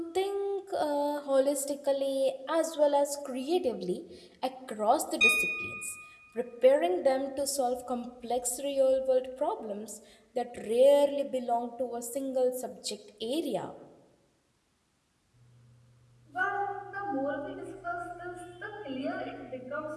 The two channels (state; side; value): identical; both; correlation 1.00